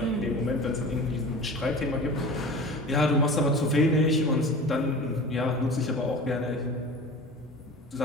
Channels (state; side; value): normal; both; correlation 0.36